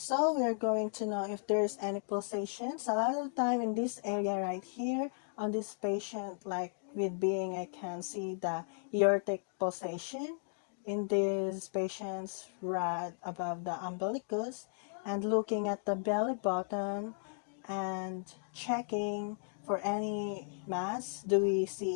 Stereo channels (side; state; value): right; silent; digital silence